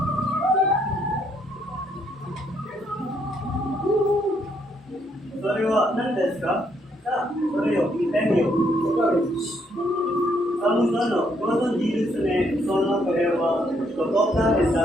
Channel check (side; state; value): both; normal; correlation 0.72